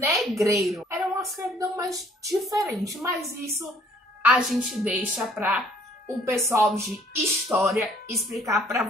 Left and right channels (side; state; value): both; normal; correlation 0.60